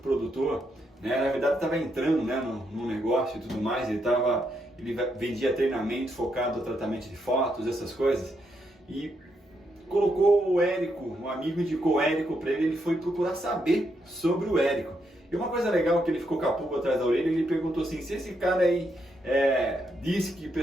na verdade estava entrando no negócio e tudo mais, ele vendia treinamento focado no tratamento de fotos, essas coisas, e colocou o Érico, um amigo indicou o Érico para ele foi procurar saber sobre o Érico. E uma coisa legal que ele ficou com a pulga atrás da orelha, ele perguntou assim, se esse cara aí disse que o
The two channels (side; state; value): both; normal; correlation 0.79